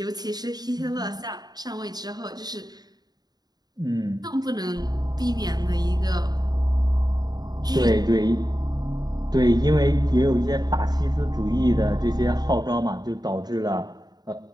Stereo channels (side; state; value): left; late; 0.19 ms